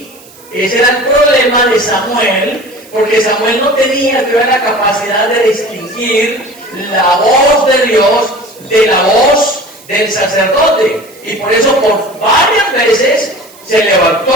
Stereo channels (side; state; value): right; noise; hiss, 24 dB below the sound